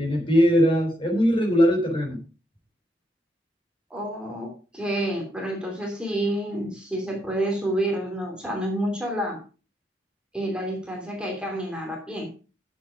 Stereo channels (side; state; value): both; normal; correlation 0.78